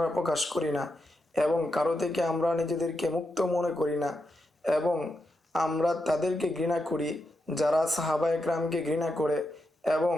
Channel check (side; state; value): both; normal; correlation 0.85